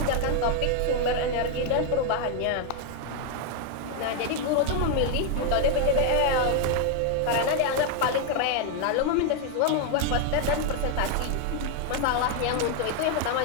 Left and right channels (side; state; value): both; different; correlation 0.00